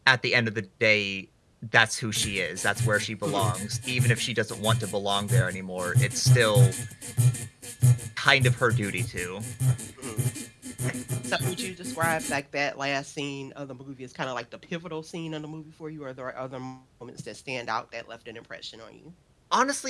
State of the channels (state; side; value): identical; both; correlation 1.00